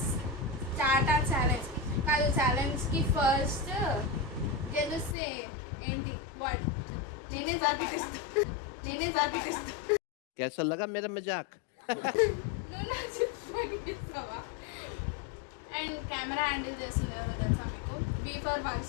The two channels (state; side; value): drops out; right; at 5.2 s